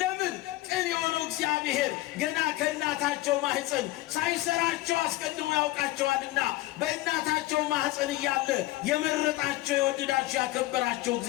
ለምን? ቅን የሆነው እግዚአብሔር ገና ከእናታቸው ማህፀን ሳይሰራቸው አስቀድሞ ያውቃቸዋልና በእናታቸው ማህፀን እያለ የመረጣቸው የወደዳቸው ያከበራቸው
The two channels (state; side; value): quieter; right; 17.6 dB